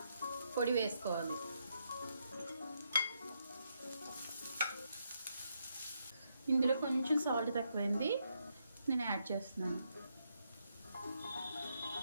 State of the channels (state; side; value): inverted; both; correlation -0.79